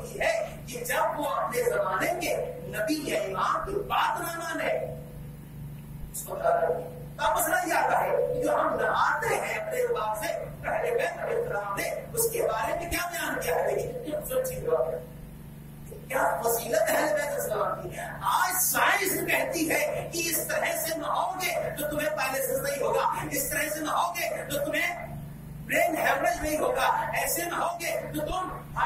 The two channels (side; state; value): both; identical; correlation 1.00